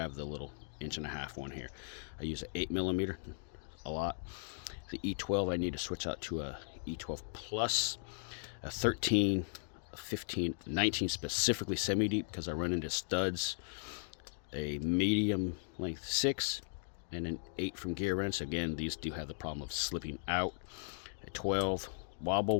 the little 1.5-inch one here. I use an 8 millimeter a lot. The E12 I need to switch out to a E12 plus, a 13, a 15, 19 specifically semi-deep because I run into studs, a medium length 6, and an 8 from gearwrench. Again, these do have the problem of slipping out. A 12 wobble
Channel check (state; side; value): silent; right; digital silence